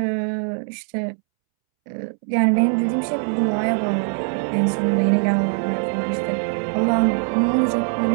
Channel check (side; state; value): left; silent; 65 dB below the other